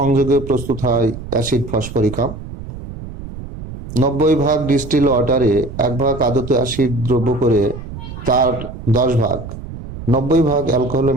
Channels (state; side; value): noise; right; rumble, 11 dB below the sound